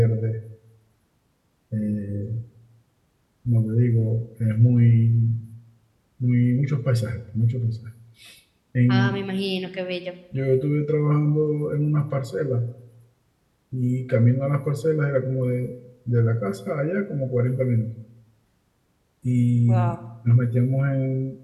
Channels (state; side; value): identical; both; correlation 1.00